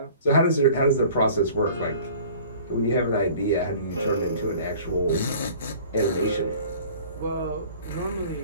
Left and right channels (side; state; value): both; inverted; correlation -0.47